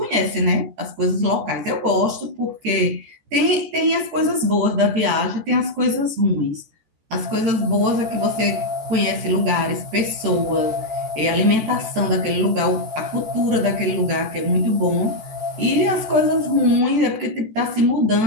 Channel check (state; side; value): late; left; 14 ms